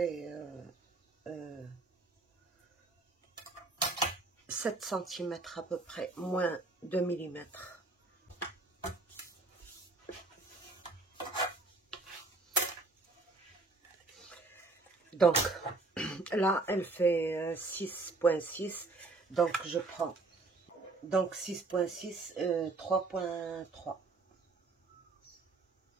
7 cm à peu près, moins 2 mm. Donc là, elle fait 6,6. Donc je prends donc 6,6, 3,3.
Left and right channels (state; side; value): quieter; left; 3.5 dB